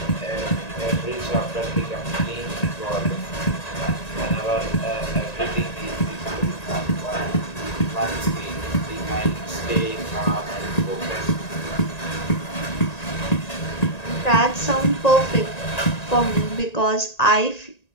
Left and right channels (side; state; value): right; late; 1.9 ms